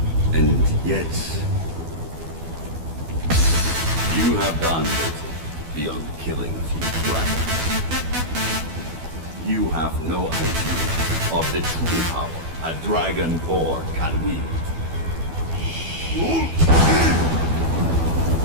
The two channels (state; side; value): late; left; 12 ms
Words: And yet... you have done little beyond killing a few dragons. You have no idea of the true power a Dragonborn can wield.